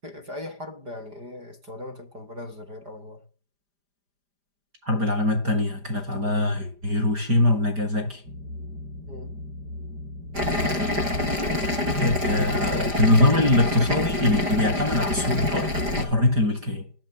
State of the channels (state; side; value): late; left; 5.0 ms